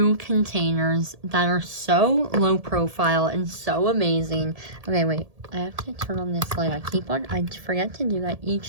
containers that are so low profile and so amazing. Okay, wait, I have to turn on this light. I forget to do that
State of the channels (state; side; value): late; left; 1.7 ms